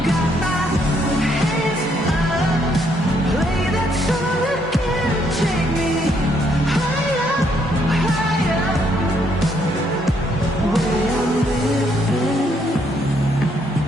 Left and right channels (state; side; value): normal; both; correlation 0.71